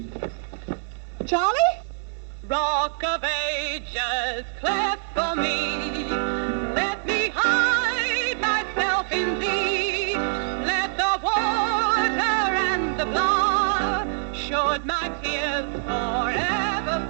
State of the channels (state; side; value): silent; left; 62 dB below the other